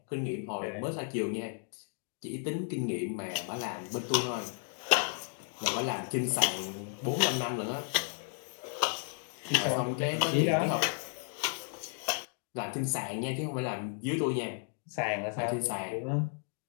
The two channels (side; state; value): right; silent; 55 dB below the other